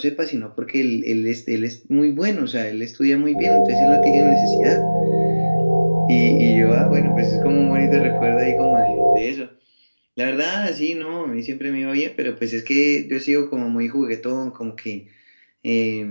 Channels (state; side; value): inverted; both; correlation -1.00